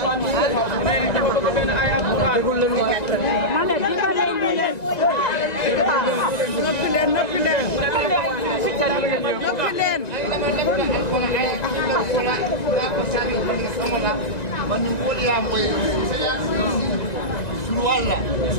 mu ne dafa bëgg benn ay alquran ma ne dimbale ñu leen noppi leen noppi leen noppi leen man ni ko ya moy sunu wala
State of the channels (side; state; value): right; late; 1.9 ms